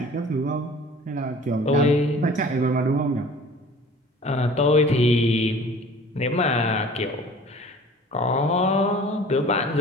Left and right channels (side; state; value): both; normal; correlation 0.46